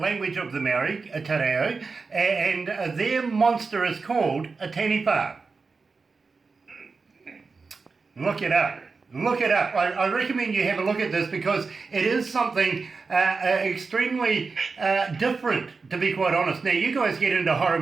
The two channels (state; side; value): quieter; left; 4.5 dB